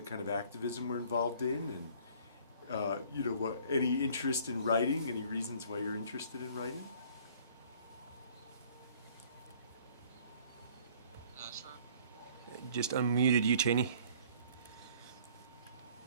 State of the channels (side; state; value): both; inverted; correlation -0.55